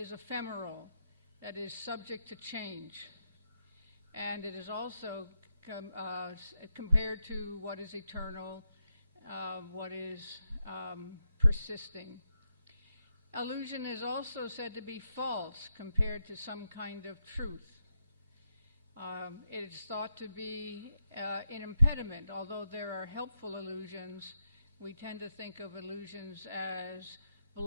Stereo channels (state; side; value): inverted; both; correlation -0.83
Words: ephemeral, that is subject to change. And it is also compared to what is eternal, what is persisting. Illusion is also said to be false compared to some kind of truth. It is thought to be an impediment. Although there are helpful illusions, we tend to think of illusions as